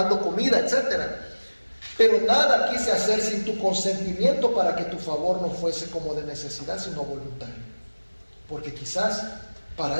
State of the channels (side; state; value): both; inverted; correlation -1.00